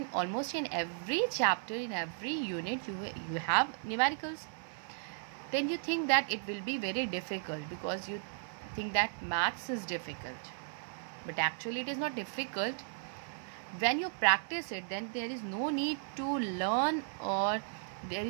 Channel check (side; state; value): left; silent; 54 dB below the other